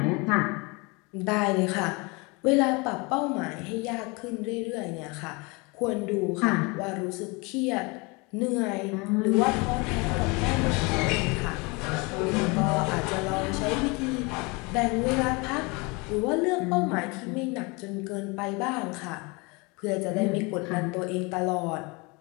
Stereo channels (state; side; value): quieter; right; 27.8 dB